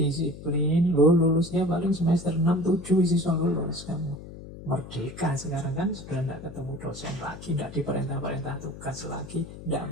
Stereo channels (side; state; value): left; noise; hum, 14 dB below the sound